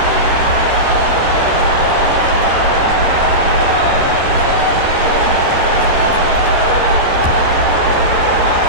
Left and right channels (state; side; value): late; left; 12 ms